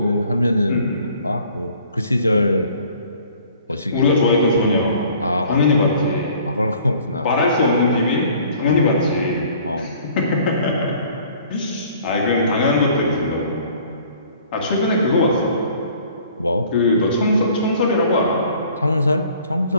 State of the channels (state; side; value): inverted; both; correlation -0.54